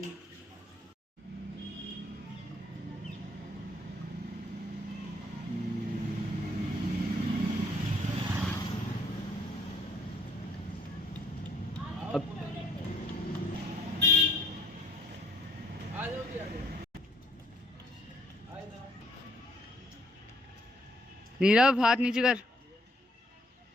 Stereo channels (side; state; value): both; normal; correlation 0.63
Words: नीरव हाथ नीचे कर।